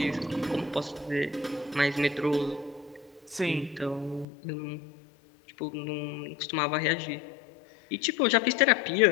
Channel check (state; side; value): drops out; right; at 4.2 s